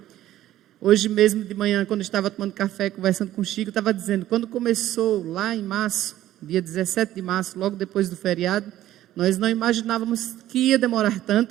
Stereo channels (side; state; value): left; quieter; 13.5 dB